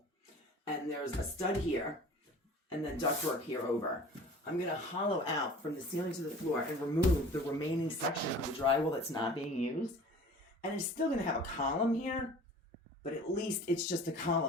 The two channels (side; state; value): both; normal; correlation 0.44